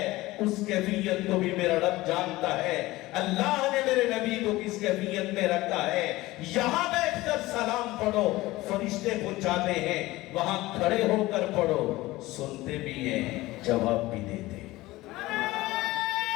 اس کیفیت کو بھی میرا رب جانتا ہے۔ اللہ نے میرے نبی کو کس کیفیت میں رکھا ہے، یہاں بیٹھ کر سلام پڑھو فرشتے پہنچاتے ہیں، وہاں کھڑے ہو کر پڑھو سنتے بھی ہیں، جواب بھی دیتے ہیں۔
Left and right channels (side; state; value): right; quieter; 18.8 dB